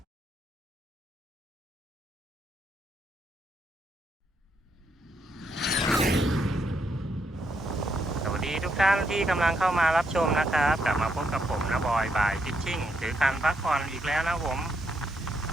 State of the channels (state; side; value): normal; both; correlation 0.77